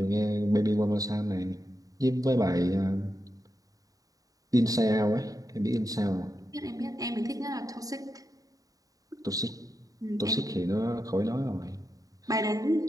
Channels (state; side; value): late; left; 0.17 ms